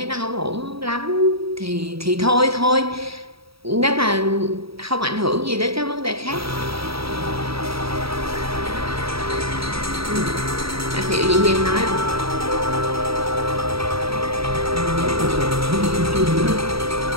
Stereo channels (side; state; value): left; late; 0.76 ms